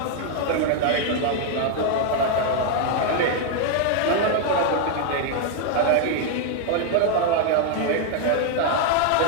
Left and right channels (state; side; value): different; both; correlation 0.00